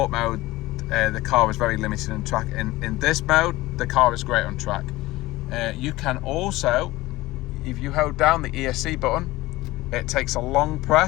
mode, the car is very limited on track. In this mode, the car is great on track. You can also, if you hold down the ESC button, it takes a long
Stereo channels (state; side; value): quieter; right; 18.8 dB